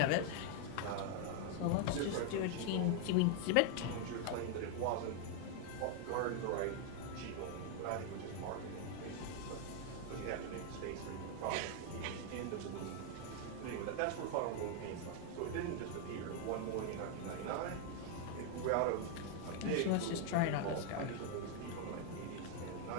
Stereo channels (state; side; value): different; both; correlation 0.00